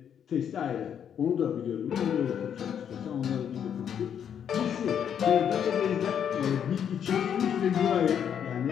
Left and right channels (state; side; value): quieter; right; 8.5 dB